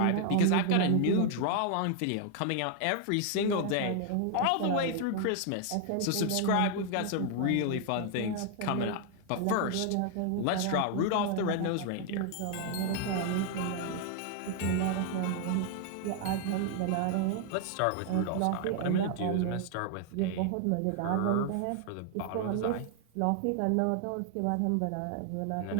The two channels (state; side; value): different; both; correlation 0.00